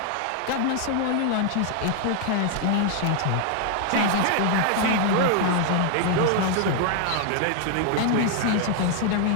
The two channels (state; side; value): different; both; correlation 0.00